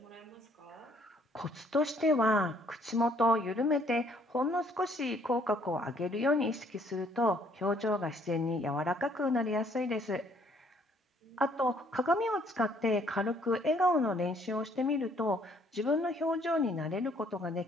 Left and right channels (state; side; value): normal; both; correlation 0.64